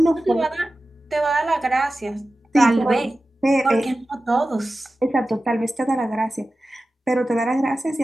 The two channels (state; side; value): normal; both; correlation 0.95